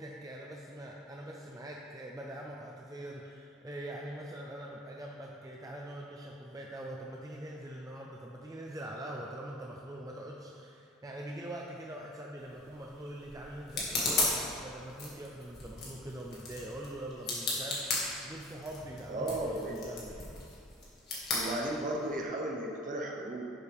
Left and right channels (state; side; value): normal; both; correlation 0.40